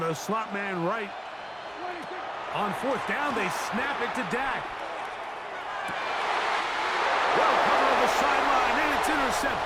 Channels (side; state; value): both; identical; correlation 1.00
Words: slot man right. On 4th down, they snap it to Dak. Well covered on the sideline, and it's